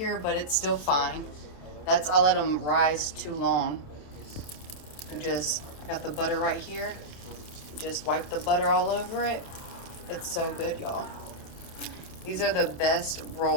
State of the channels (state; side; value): late; right; 28 ms